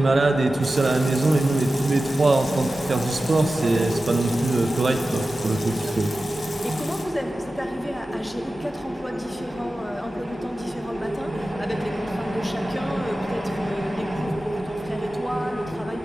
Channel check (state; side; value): normal; both; correlation 0.94